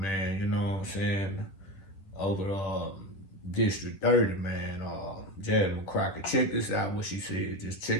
you know what I'm saying, over District 30, man, Jasmine Crockett. Check this out, what she said. Just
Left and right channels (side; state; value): right; late; 10 ms